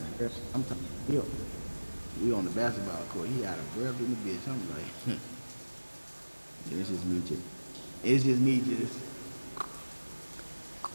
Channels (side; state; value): both; inverted; correlation -1.00